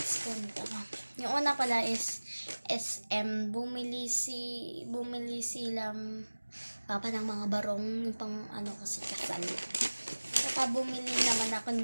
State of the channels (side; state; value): both; inverted; correlation -1.00